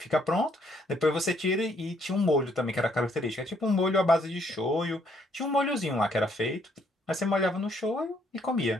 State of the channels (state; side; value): normal; both; correlation 0.68